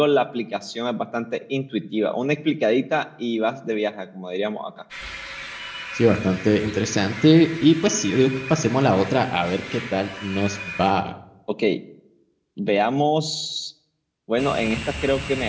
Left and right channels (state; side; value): identical; both; correlation 1.00